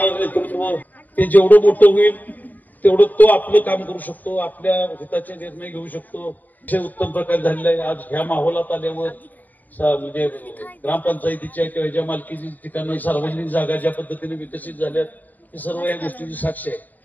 नेतृत्व ते जेवढं मोठं होईल तेवढं तो आपलं काम करू शकतो, आपल्या हिताचे निर्णय घेऊ शकतो। उत्तम प्रकारे झालेला आहे। आज ह्या माहोलात आल्यावर म्हणजे ग्रामपंचायतीच्या किंवा ज्या मालकीची ठिकाणी सार्वजनिक जागा ज्या पद्धतीने विकसित झाल्यात हे सर्व या गोष्टीची साक्ष आहे।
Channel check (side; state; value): right; late; 0.083 ms